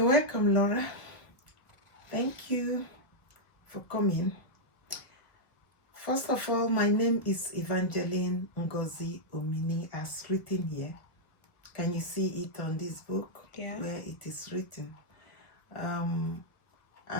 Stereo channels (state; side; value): late; right; 1.1 ms